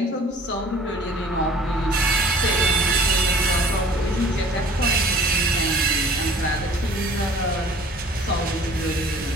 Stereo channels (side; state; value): both; normal; correlation 0.50